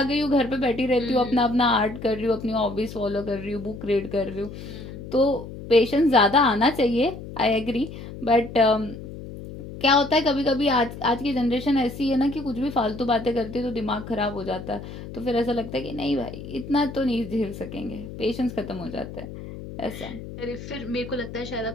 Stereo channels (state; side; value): noise; left; hum, 11 dB below the sound